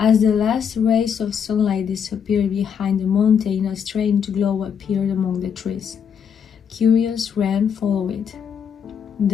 the last rays of sunlight disappeared behind the mountain, a strange glow appeared among the trees. Curious, Ren followed it.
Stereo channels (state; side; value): quieter; right; 7.4 dB